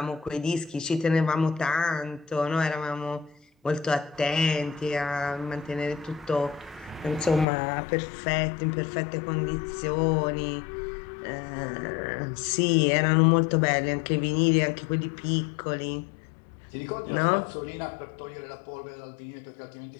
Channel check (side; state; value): right; drops out; at 7.5 s